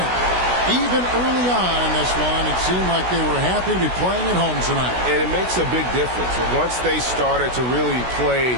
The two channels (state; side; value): late; left; 16 ms